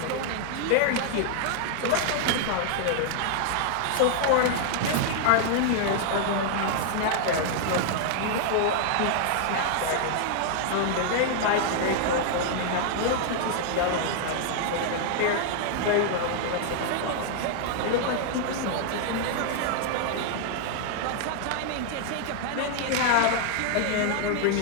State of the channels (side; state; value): both; different; correlation 0.00